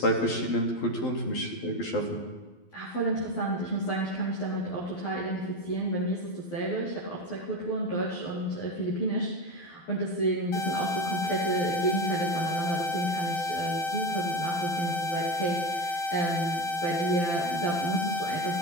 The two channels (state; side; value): late; right; 12 ms